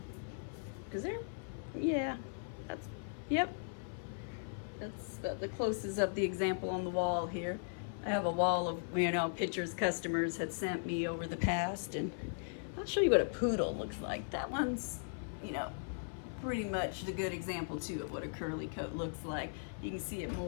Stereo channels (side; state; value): right; silent; 52 dB below the other